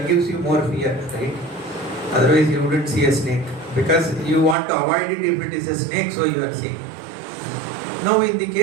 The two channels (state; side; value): drops out; left; at 4.5 s